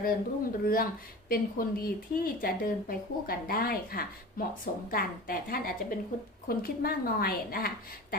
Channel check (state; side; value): normal; both; correlation 0.35